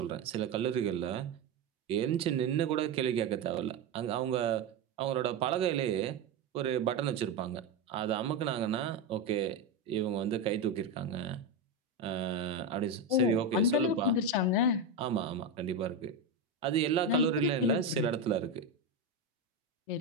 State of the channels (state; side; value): quieter; left; 3.2 dB